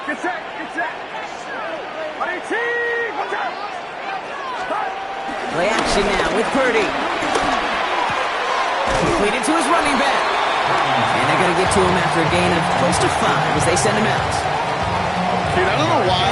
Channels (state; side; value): identical; both; correlation 1.00